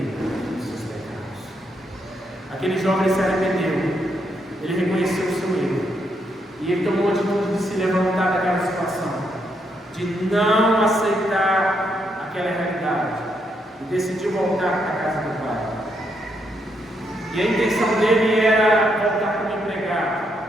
dos seus pecados. Aquele jovem se arrependeu, ele reconheceu o seu erro, e ele tomou a atitude de se levantar daquela situação, de não aceitar aquela realidade, e decidiu voltar para a casa do Pai. E a intenção dele era voltar como empregado,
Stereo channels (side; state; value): both; normal; correlation 0.78